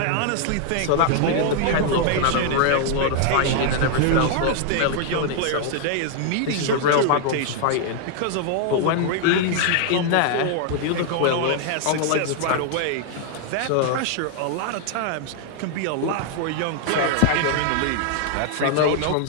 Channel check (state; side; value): different; both; correlation 0.00